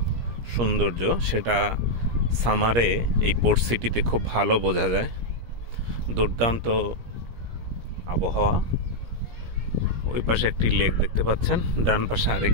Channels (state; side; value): late; left; 17 ms